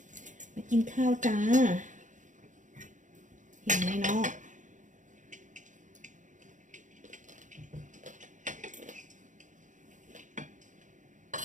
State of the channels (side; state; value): left; late; 0.36 ms